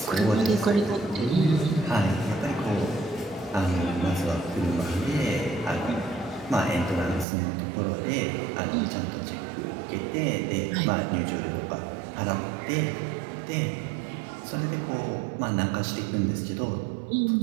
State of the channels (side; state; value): left; drops out; at 7.2 s